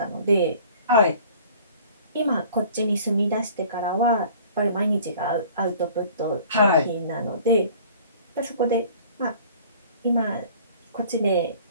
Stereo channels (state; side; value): inverted; both; correlation -0.49